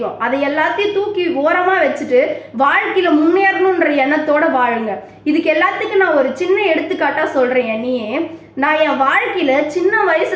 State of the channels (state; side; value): identical; both; correlation 1.00